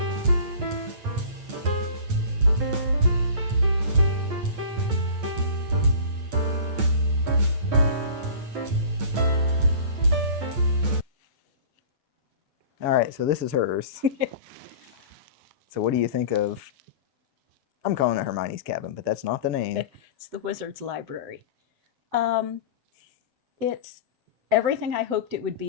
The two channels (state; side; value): late; left; 8.8 ms